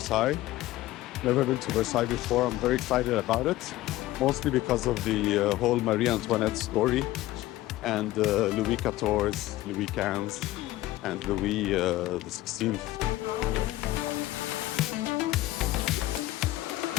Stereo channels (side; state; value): right; quieter; 16.3 dB